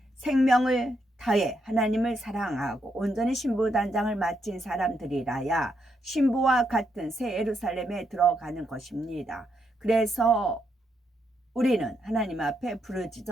생명을 다해 하나님을 사랑하고 온전히 신부단장을 마친 사람들이라야 신부와 같은 새 예루살렘에 들어가는 것입니다. 그래서 우리는 하나님 앞에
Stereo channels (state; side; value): normal; both; correlation 0.79